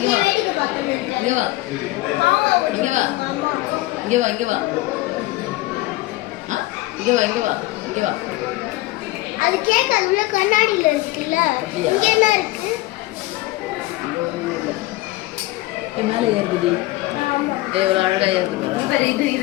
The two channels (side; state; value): right; quieter; 18.8 dB